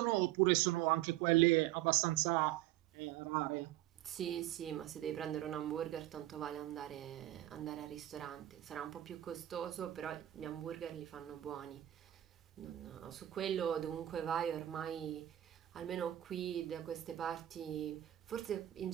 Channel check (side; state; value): left; quieter; 13.9 dB